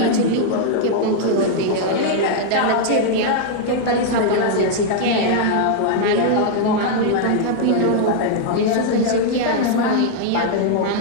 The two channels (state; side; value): different; both; correlation -0.01